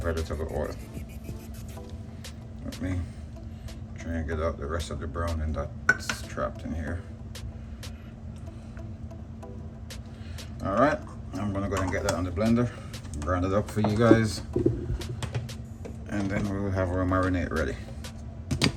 oil. Let me try and get out the rest of the browning that's trapped in here. All right, I'm gonna go ahead and get that on the blender, grind it up for you guys, and then we'll have our marinade ready.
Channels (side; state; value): both; identical; correlation 1.00